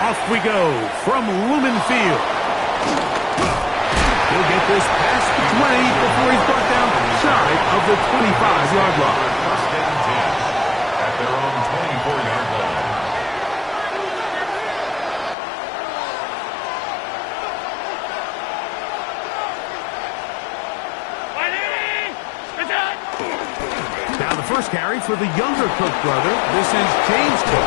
we go from Lumen Field. He'll get this past the 20 before he's brought down shy of the 25-yard line. First and 10 at their own 24-yard line. Now the first carry for the younger Cook brother. This is James Cook.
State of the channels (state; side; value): drops out; right; at 15.4 s